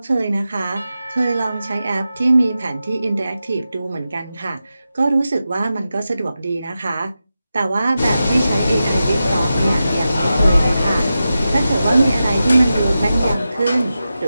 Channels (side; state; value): both; inverted; correlation -0.91